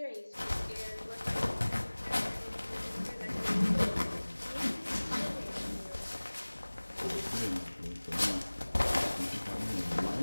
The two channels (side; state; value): both; inverted; correlation -1.00